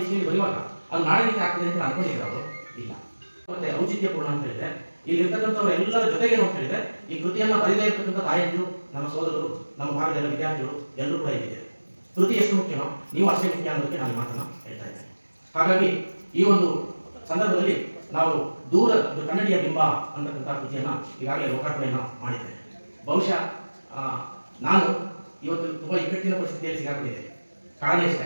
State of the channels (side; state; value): both; inverted; correlation -1.00